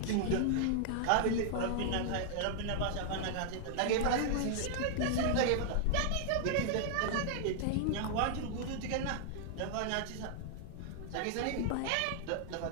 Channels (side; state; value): both; different; correlation 0.00